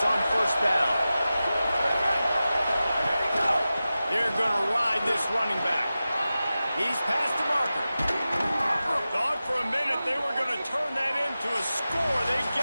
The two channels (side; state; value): both; inverted; correlation -0.94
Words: on first down. They're going to ride this running back. He's past the marker. Thought for a minute they were going to turn that into a score. They